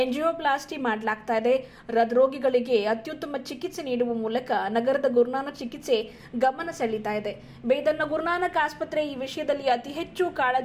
ಎಂಜಿಯೋಪ್ಲಾಸ್ಟಿ ಮಾಡಲಾಗ್ತಾ ಇದೆ. ಹೃದ್ರೋಗಿಗಳಿಗೆ ಅತ್ಯುತ್ತಮ ಚಿಕಿತ್ಸೆ ನೀಡುವ ಮೂಲಕ ನಗರದ ಗುರುನಾನಕ್ ಚಿಕಿತ್ಸೆ ಗಮನ ಸೆಳೀತಾ ಇದೆ. ಬೀದರ್ನ ಗುರುನಾನಕ್ ಆಸ್ಪತ್ರೆ ಈ ವಿಷಯದಲ್ಲಿ ಅತಿ ಹೆಚ್ಚು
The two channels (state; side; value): identical; both; correlation 1.00